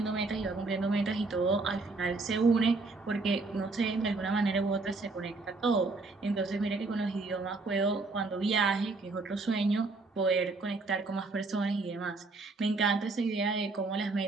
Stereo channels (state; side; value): quieter; left; 3.6 dB